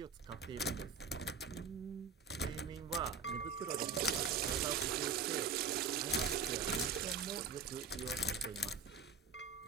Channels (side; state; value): left; quieter; 5.2 dB